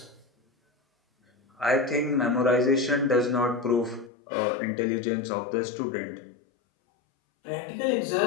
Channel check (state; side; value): drops out; right; at 4.1 s